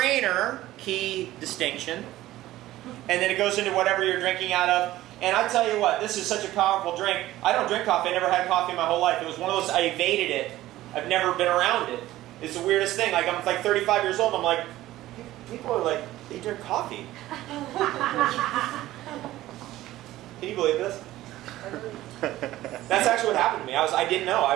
Key distinction. And then it goes into whatever you're drinking out of. And I tell you what, this is such a powerful drink. I don't drink coffee. I never had coffee in my whole life. It was one of those, I evaded it. I've never been around it. It's the weirdest thing. Like, I'm like 35 years old. I'm like, people are like, they drink coffee. Can you believe this? That's actually what happened to me. I didn't know. I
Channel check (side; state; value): left; quieter; 15.5 dB